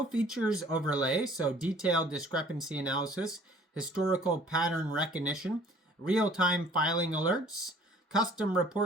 features overlay, so detailed discrepancy analysis, historical pattern recognition, real-time filing alerts, custom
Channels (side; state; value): both; normal; correlation 0.53